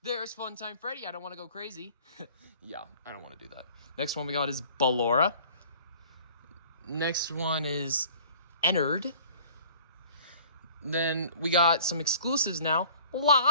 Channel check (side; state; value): both; inverted; correlation -0.50